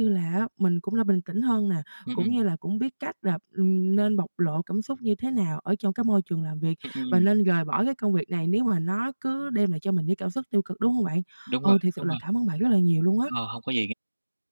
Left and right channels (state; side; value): inverted; both; correlation -1.00